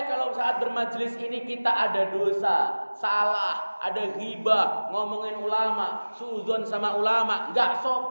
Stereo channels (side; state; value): both; inverted; correlation -1.00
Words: kalau saat bermajlis ini kita ada dosa, salah, ada ghibah, ngomongin ulama, suudzon sama ulama, nggak